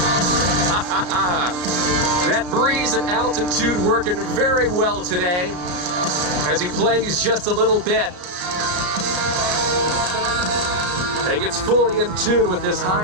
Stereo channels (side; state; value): left; late; 33 ms